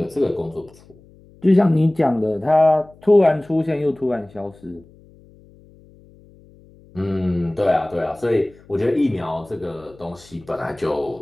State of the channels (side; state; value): left; noise; hum, 26 dB below the sound